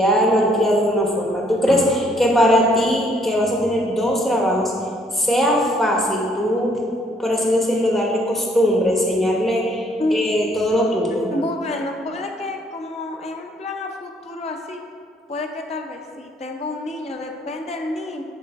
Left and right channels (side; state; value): both; normal; correlation 0.65